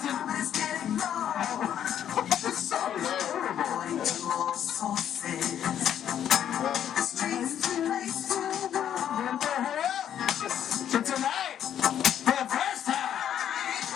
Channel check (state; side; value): quieter; right; 9.9 dB